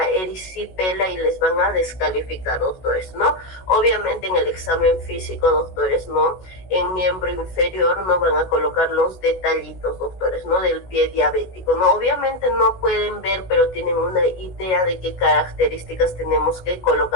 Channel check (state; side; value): late; right; 16 ms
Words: erisipela y les van a descalificar, doctores, ¿no? Obviamente en el examen físico, doctores, ¿no? En miembro inferior no van a colocar los detallitos, doctores, ¿no? Del pie diabético, ¿no? Obviamente no pueden ver, pero tienen una idea de qué características tenemos que